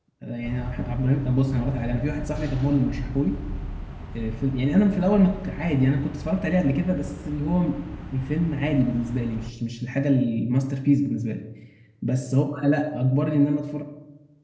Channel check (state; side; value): identical; both; correlation 1.00